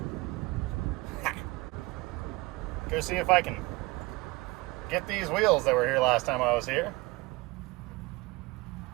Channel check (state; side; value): quieter; left; 22.6 dB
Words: Go see if I can get these wheels that were here last time I was here.